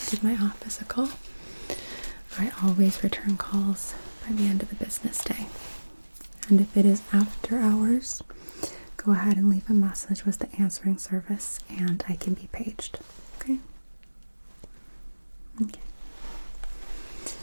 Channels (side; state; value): both; inverted; correlation -1.00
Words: give my office a call. I always return calls by the end of the business day. And if it is after hours, go ahead and leave a message with the answering service and I can be paged. Okay? Okay.